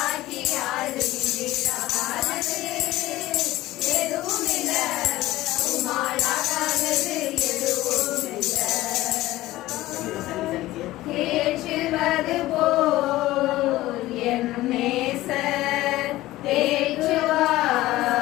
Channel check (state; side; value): quieter; right; 16.8 dB